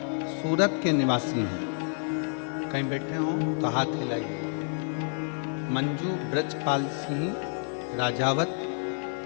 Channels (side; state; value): right; silent; 59 dB below the other